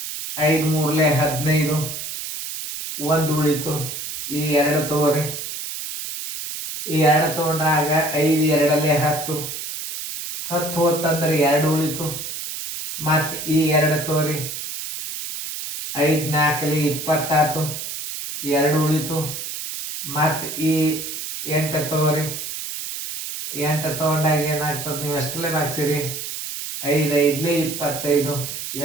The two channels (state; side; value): noise; right; hiss, 7 dB below the sound